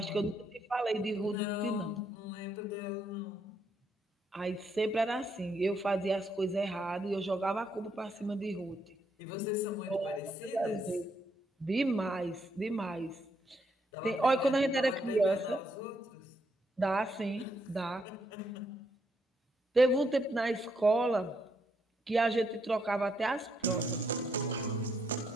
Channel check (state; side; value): normal; both; correlation 0.76